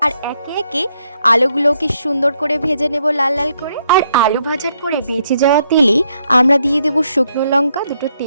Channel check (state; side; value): inverted; both; correlation -0.75